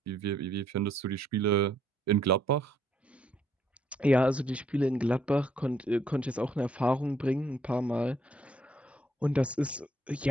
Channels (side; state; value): both; normal; correlation 0.69